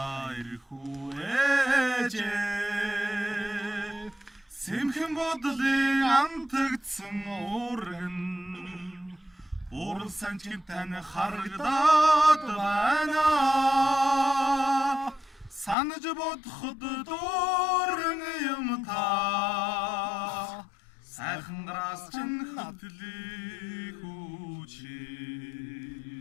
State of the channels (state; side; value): drops out; right; at 15.8 s